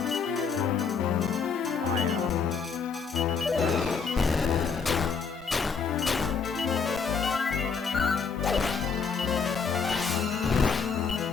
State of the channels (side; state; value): right; quieter; 5.6 dB